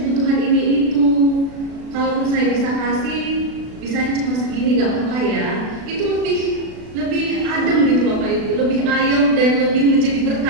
kebutuhan ini itu. Kalau saya bisa kasih, bisanya cuma segini nggak apa-apa ya. Itu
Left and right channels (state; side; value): late; left; 36 ms